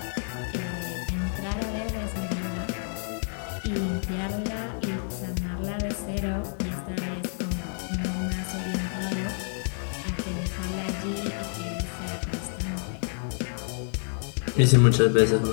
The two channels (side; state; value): right; silent; 55 dB below the other